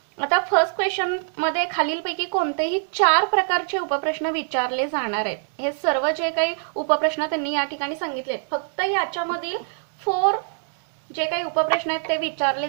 आता फर्स्ट क्वेश्चन मध्ये खालीलपैकी कोणतेही 4 प्रकारचे उपप्रश्न विचारले जाणार आहेत. हे सर्व जे काही उपप्रश्न त्यांनी या ठिकाणी सांगितले, फक्त याच्यामधील 4 जे काही उपप्रश्न आहेत ते विचारले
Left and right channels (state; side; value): silent; left; digital silence